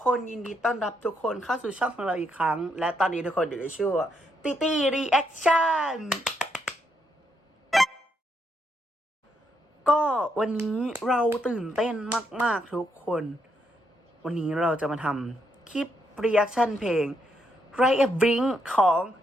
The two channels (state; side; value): normal; both; correlation 0.77